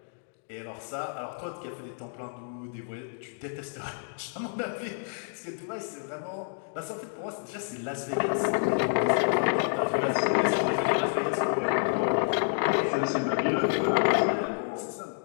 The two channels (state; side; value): silent; right; digital silence